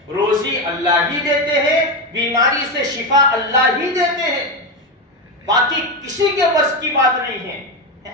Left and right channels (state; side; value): normal; both; correlation 0.12